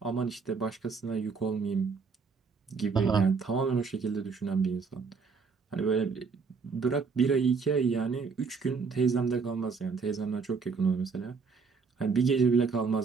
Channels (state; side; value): quieter; left; 5.1 dB